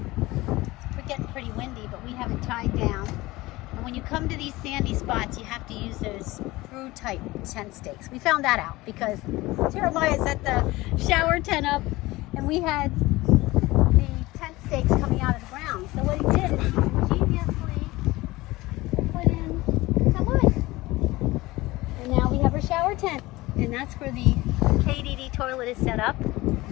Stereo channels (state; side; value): quieter; right; 19.8 dB